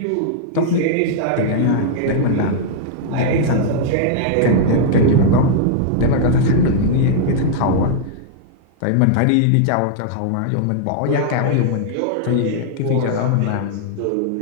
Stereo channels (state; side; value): different; both; correlation -0.01